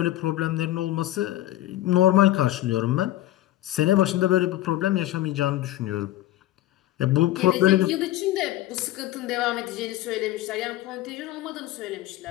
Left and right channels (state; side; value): quieter; right; 14.8 dB